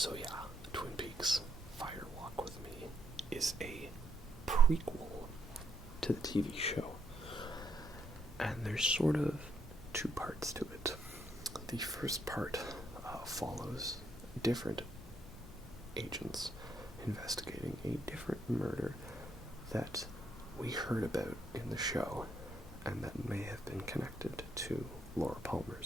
yeah, Twin Peaks Fire Walk With Me is a prequel to the TV show. And there's sort of two parts to it. The first part follows different agents investigating a different murder that we heard about in the show and that may have been connected to Laura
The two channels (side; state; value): both; normal; correlation 0.74